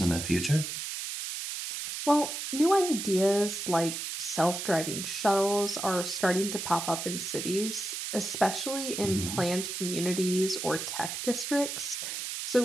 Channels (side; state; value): right; noise; hiss, 5 dB below the sound